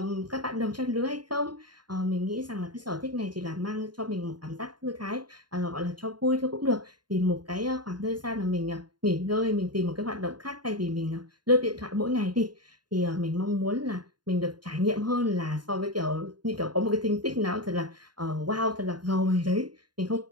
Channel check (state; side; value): late; left; 0.71 ms